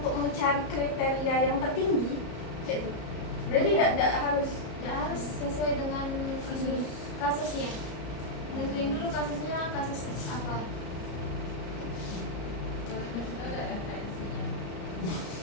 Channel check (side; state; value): right; late; 34 ms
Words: mencari kriteria yang tertinggi. Gitu. Berarti tidak harus sesuai dengan kasusnya. Nentuin dulu kasusnya kasus apa.